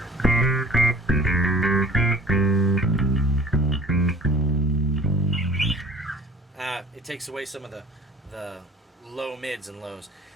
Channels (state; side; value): normal; both; correlation 0.48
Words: It takes away some of the low mids and lows.